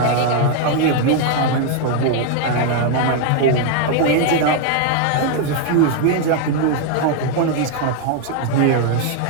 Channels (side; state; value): both; different; correlation 0.00